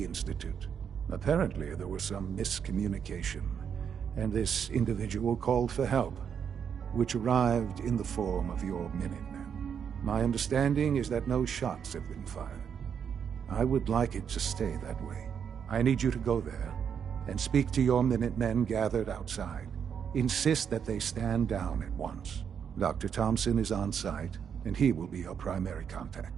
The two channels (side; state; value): left; quieter; 7.6 dB